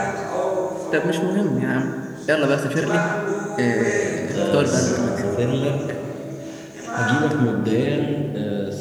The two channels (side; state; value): both; identical; correlation 1.00